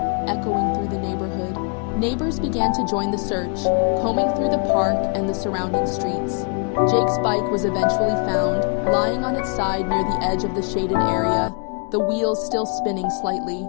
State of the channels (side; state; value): right; quieter; 38.9 dB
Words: echoing through the neighborhood. Neighbors began to join the search, combing through the park and the surrounding streets. Jake's bike was eventually found, lying on its side near the edge of the shaded area, the wheels still spinning slightly.